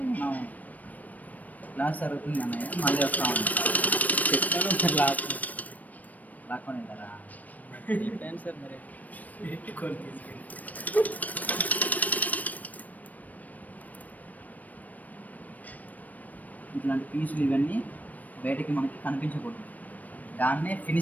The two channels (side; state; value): right; late; 0.077 ms